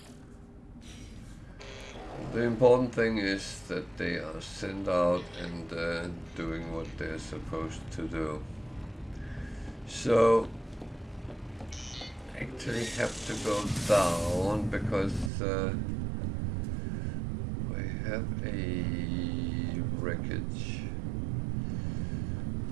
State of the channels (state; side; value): drops out; left; at 15.3 s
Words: The important thing is that they are sent out and doing what they're supposed to do. So actually have to go down because we have a wreckage.